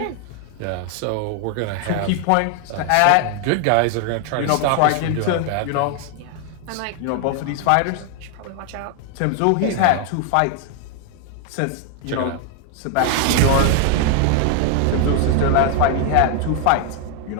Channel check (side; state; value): both; different; correlation 0.00